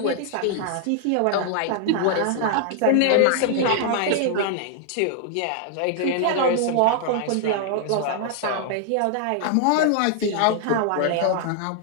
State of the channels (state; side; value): different; both; correlation -0.01